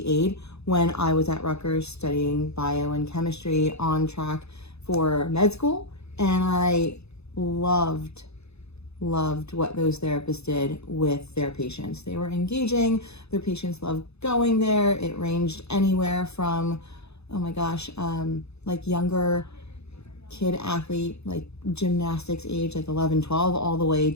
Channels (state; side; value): late; right; 0.79 ms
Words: aide when I was at Rutgers studying bio and chemistry on track for med school. And I loved what those therapists did with their patients. They were engaging, their patients loved going there. It ranged anywhere from, like younger kid athlete, like gymnastics age, like 11, 12, all the way